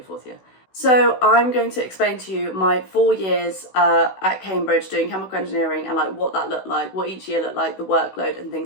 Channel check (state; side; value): late; right; 16 ms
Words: 4th year. So I'm going to explain to you my 4 years at Cambridge doing chemical engineering, and what that looked like, what each year looked like, the workload and